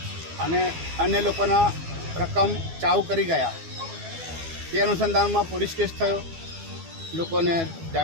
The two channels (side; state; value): left; late; 12 ms